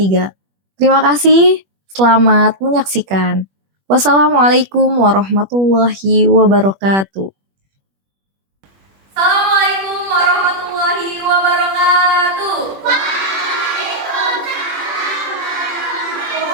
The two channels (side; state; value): left; late; 21 ms